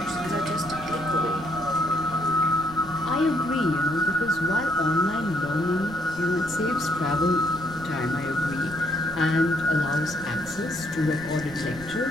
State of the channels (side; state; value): right; noise; rumble, 17 dB below the sound